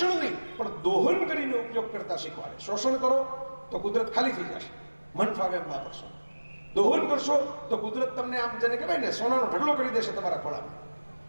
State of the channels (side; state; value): both; inverted; correlation -1.00